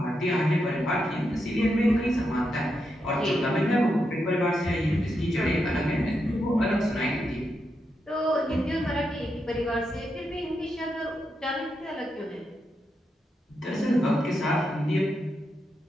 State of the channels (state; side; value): normal; both; correlation 0.84